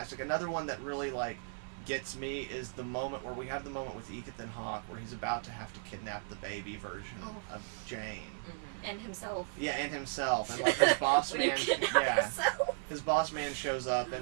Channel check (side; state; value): left; silent; 54 dB below the other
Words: Another one that really, like, gets me is the moment where we have the moment with Ethan Hawke where he's about to have to kidnap the baby version of Jane. And himself. Yeah, and himself. And, like, his boss When he man... kidnapped Yeah. himself. His boss man shows up,